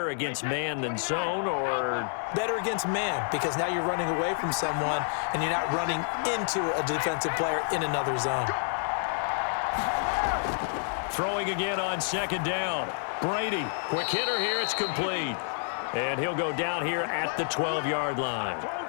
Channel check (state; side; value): silent; right; digital silence